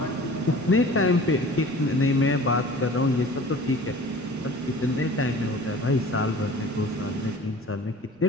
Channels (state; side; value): normal; both; correlation 0.44